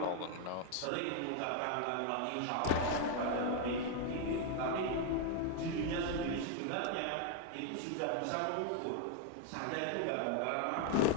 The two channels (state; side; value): different; both; correlation 0.01